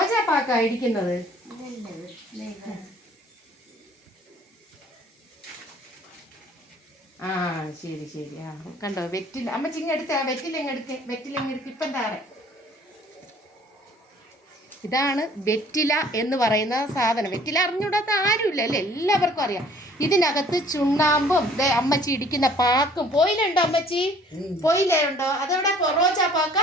പാക്കാ ഇടിക്കുന്നത്. ആ ശരി ശരി. ആ കണ്ടോ വെറ്റില. അമ്മച്ചി ഇങ്ങെടുത്ത് വെറ്റില ഇങ്ങെടുക്ക് ഇപ്പം താറെ. ഇതാണ് വെറ്റില എന്ന് പറയുന്ന സാധനം. വെറ്റില അറിഞ്ഞുകൂടാത്ത ആരുമില്ല അല്ലേ? എല്ലാവർക്കും അറിയാം. ഇതിനകത്ത് ചുണ്ണാമ്പും അമ്മച്ചി ഇടിക്കുന്ന പാക്കും. പോയിലുണ്ടോ അമ്മച്ചി? പോയില്ലുണ്ടോ? അതെവിടെ? റോജാ പാക്ക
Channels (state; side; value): normal; both; correlation 0.55